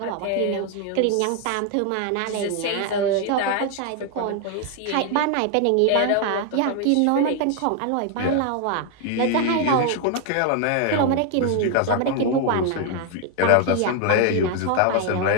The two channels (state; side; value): different; both; correlation 0.01